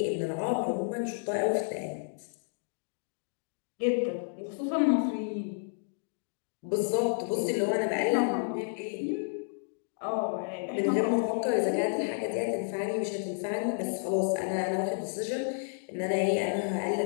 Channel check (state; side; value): silent; right; digital silence